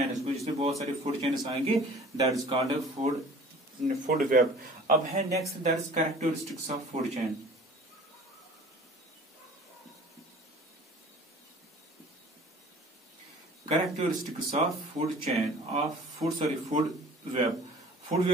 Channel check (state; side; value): normal; both; correlation 0.47